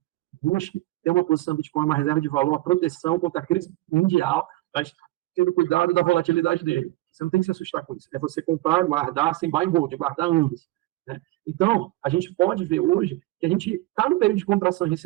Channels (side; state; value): left; quieter; 18.5 dB